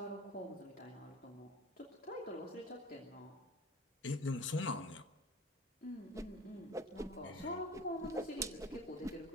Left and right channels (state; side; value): normal; both; correlation 0.41